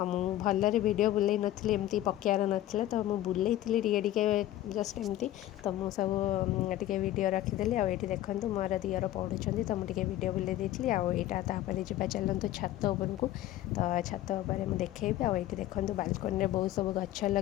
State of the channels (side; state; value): right; quieter; 14.0 dB